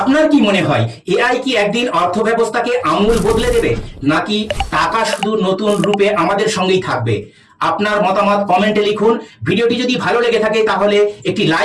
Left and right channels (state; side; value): identical; both; correlation 1.00